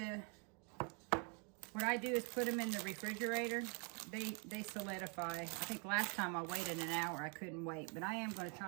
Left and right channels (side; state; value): left; quieter; 36.5 dB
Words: what I do is put them in the refrigerator. They solidify. I think last time I waited an hour, I couldn't wait. But I am going to